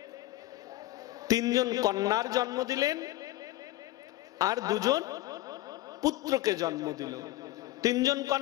তিনজন কন্যার জন্ম দিলেন আর দুজন পুত্রকে জন্ম দিল। তিনজন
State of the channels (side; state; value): right; quieter; 16.7 dB